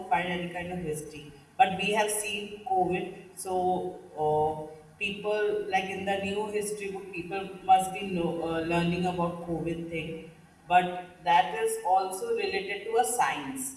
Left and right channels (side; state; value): both; identical; correlation 1.00